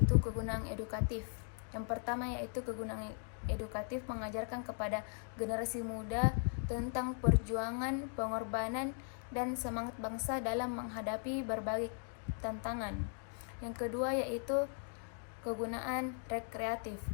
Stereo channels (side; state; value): right; silent; 52 dB below the other